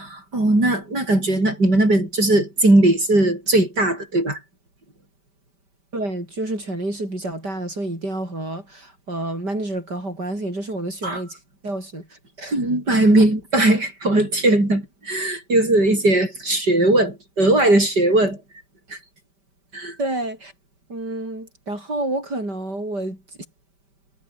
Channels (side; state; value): left; late; 5.1 ms